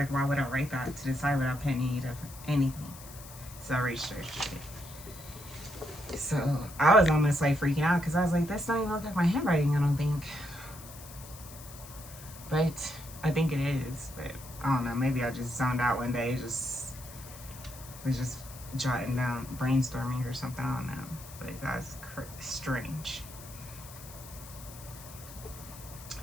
why would I write that to the side without putting any of anything? So I researched it. So I was almost like freaking out, because I was like, this don't even look like my handwriting, I don't think. But I think it is. But I don't know, maybe I just zoned out one day, was just jotting down, brainstorming or something, I don't know. But that's strange.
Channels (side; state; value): left; noise; hiss, 16 dB below the sound